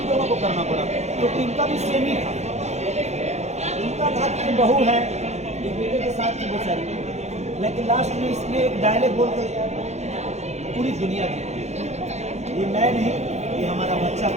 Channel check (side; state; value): left; late; 0.32 ms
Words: दोनों को करना पड़ा, क्योंकि इनका भी सेम ही था। इनका था कि बहू है, एक बेटे के साथ थी बेचारी, लेकिन लास्ट में इसमें एक डायलॉग बोलकर पूरी दुनिया की, ये मैं नहीं, ये हमारा बच्चा